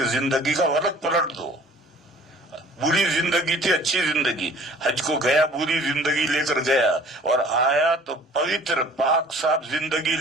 زندگی کا ورق پلٹ دو. بری زندگی تھی، اچھی زندگی، حج کو گیا بری زندگی لے کر گیا اور آیا تو پوتر پاک صاف زندگی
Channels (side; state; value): both; normal; correlation 0.50